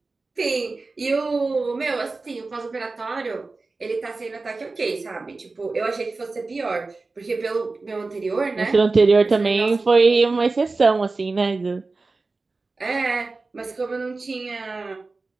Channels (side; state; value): left; quieter; 3.7 dB